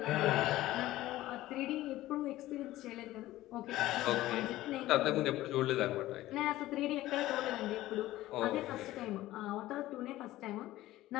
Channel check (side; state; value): right; quieter; 16.0 dB